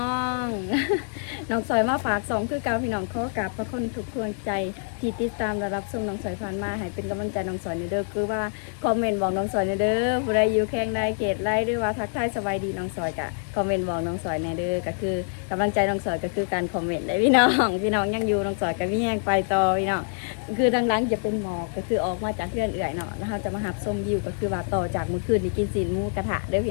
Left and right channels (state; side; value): silent; right; digital silence